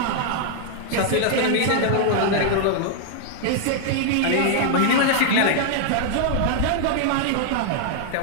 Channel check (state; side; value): different; both; correlation -0.01